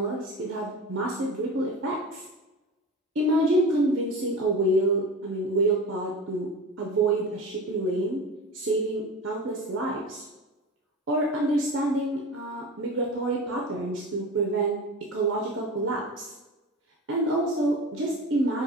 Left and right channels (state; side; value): normal; both; correlation 0.31